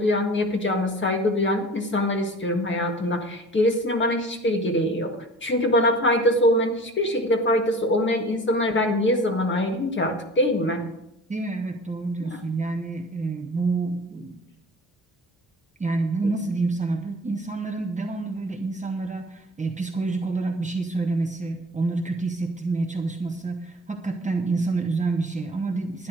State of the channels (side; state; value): both; normal; correlation 0.44